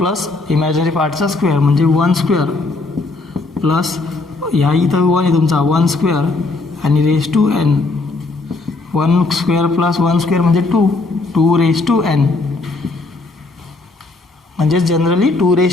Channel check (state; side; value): quieter; right; 3.4 dB